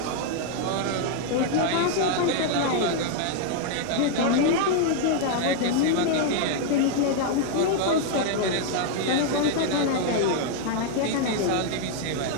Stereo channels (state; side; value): different; both; correlation 0.00